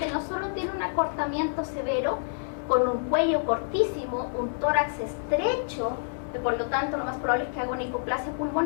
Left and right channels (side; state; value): right; silent; digital silence